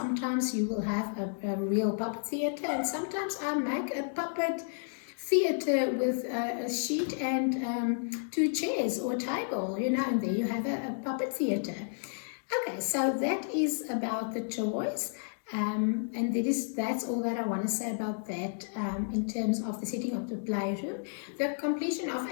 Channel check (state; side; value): silent; right; digital silence